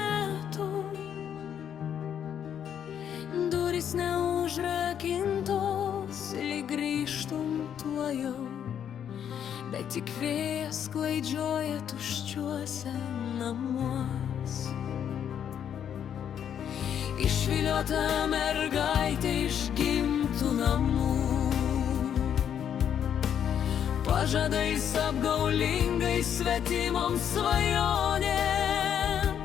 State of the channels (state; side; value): quieter; right; 9.0 dB